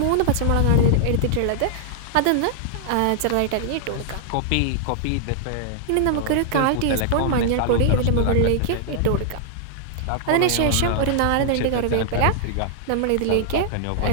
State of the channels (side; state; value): both; different; correlation -0.01